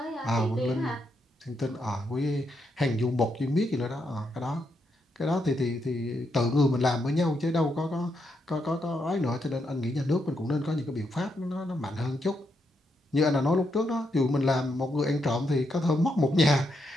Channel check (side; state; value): both; normal; correlation 0.80